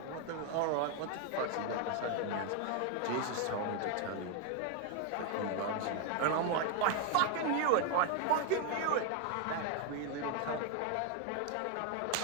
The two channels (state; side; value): different; both; correlation 0.01